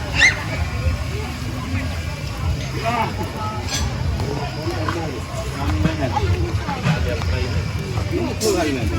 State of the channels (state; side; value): identical; both; correlation 1.00